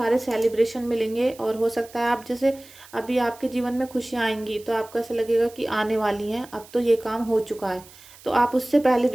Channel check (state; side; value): noise; right; hiss, 22 dB below the sound